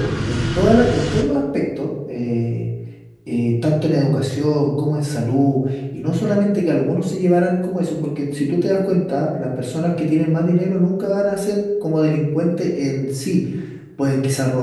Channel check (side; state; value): both; identical; correlation 1.00